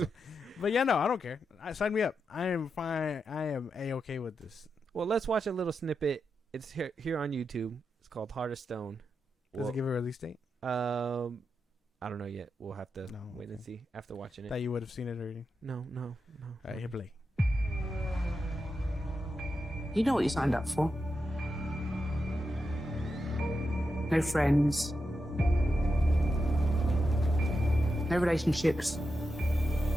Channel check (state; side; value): normal; both; correlation 0.87